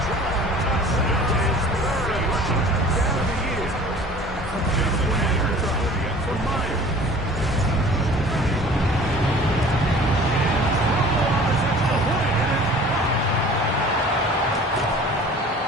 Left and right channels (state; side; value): normal; both; correlation 0.46